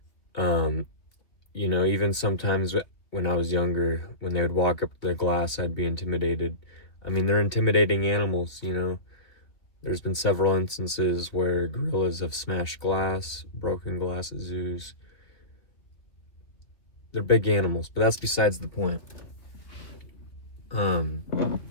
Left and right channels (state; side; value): late; right; 2.4 ms